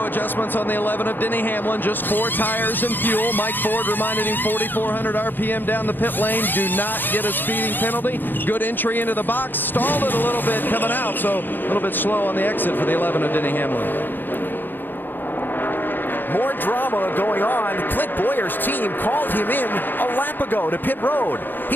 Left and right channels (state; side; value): late; right; 0.092 ms